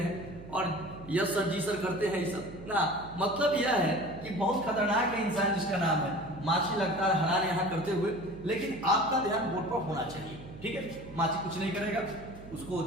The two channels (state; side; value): noise; right; hum, 15 dB below the sound